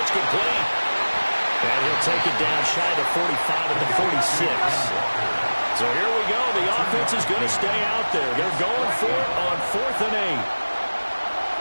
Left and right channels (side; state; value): both; inverted; correlation -1.00